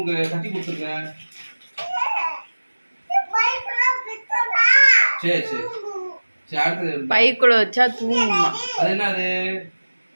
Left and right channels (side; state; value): both; inverted; correlation -1.00